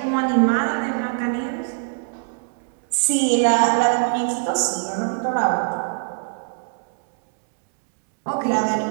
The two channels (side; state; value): left; silent; 64 dB below the other